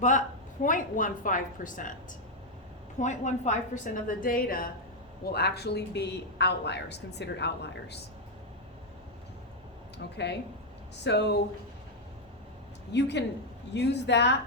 0.15%. 0.15% of the data will actually be outliers, considered outliers. Okay, so you can use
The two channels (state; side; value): normal; both; correlation 0.01